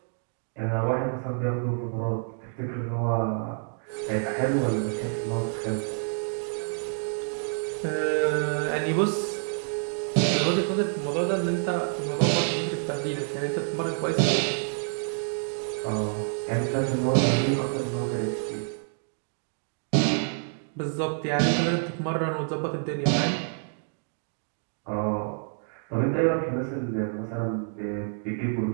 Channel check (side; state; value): left; silent; 59 dB below the other